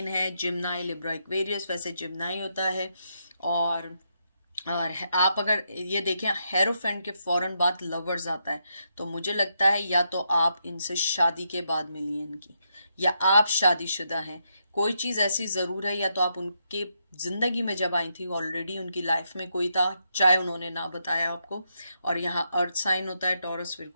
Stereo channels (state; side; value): inverted; both; correlation -0.80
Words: है, जिम्नाई, लिब्रा, एक्वेरियस। वैसे जिम्नाई होता है। और आप अगर ये देखें, हेरोफेंट के फौरन बाद लवर्स आता है, तो मुझे लगता है या तो आप इनसे शादी के बाद मिली हैं इनकी, या आप शादीशुदा हैं। कोई चीज़ ऐसी ज़रूर है, या तो आप उनके ज़िंदगी में जब आई थी ऑलरेडी उनकी लाइफ में कोई था, चाहे उन्होंने ना बताया आपको। और यहाँ अर्थ साइन होता है, टॉरस,